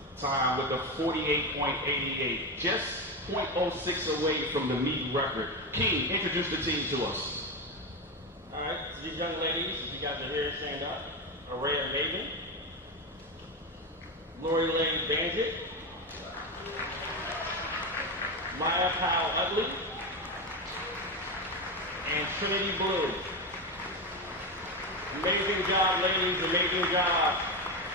time with a 48.88. Just 0.06 away from the meet record. King, introduce the team to us. All right, so these young ladies, if you guys are here, stand up. Araya Maven, Lori Lane Bandit, Maya Powell Utley, and Trinity Blue. Amazing job, ladies, amazing job.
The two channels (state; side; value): normal; both; correlation 0.15